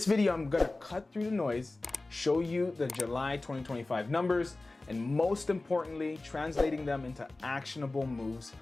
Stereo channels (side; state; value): right; quieter; 3.1 dB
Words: video, I'm gonna cut through the noise, show you the July 2025 numbers, and most importantly, translating them into actionable moves,